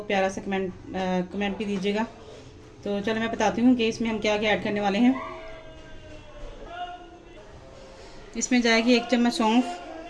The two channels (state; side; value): identical; both; correlation 1.00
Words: प्यारा सा कमेंट भी दीजिएगा। तो चलो मैं बताती हूँ कि इसमें हम क्या क्या ऐड करने वाले हैं। इसमें जाएगी 1 चम्मच सौंफ,